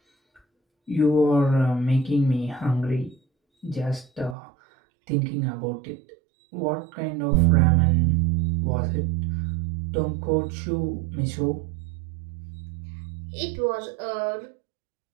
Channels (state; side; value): drops out; left; at 4.4 s